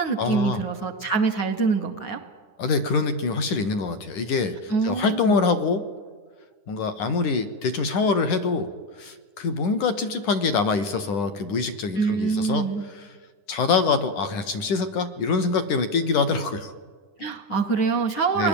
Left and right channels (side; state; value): right; late; 9.9 ms